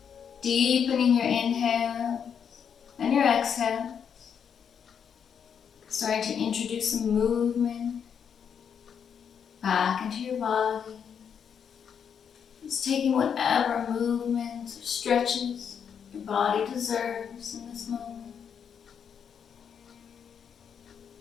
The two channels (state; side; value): quieter; right; 7.5 dB